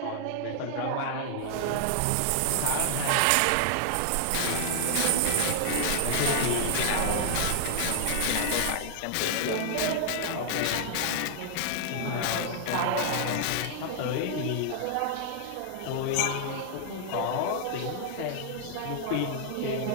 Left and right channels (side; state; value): both; different; correlation -0.01